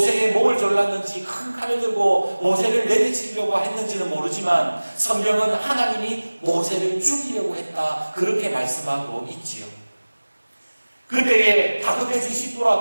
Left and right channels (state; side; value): inverted; both; correlation -1.00